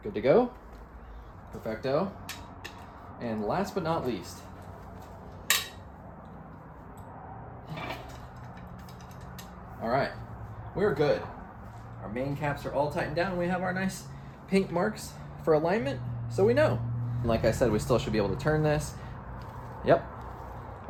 Good to go. Perfecto. And last but not least, all right, we're good. Our main caps are all tightened down. We have our nice pink marks for alignment, so we know. Like I said, we still should be able to turn this. Yep,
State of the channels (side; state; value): both; identical; correlation 1.00